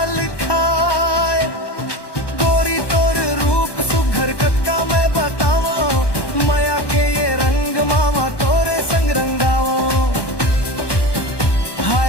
खाए। गोरी तोर रूप सुघर कतका मैं बताओ माया के ये रंग मामा तोरे संग रंगाओ।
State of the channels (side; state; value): right; late; 1.1 ms